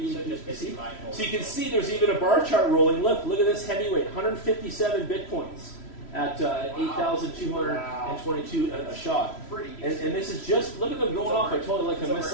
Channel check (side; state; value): right; late; 3.1 ms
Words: So just basically buy gold. So you can see there's even a bar chart rolling. Look at this heavyweight, 157 Bitcoins. at 8,222 a shot. Pretty And this is just, look at them going off. I totally like a It's